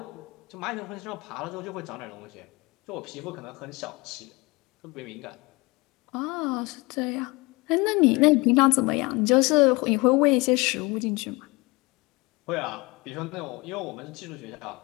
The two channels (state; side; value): quieter; right; 24.8 dB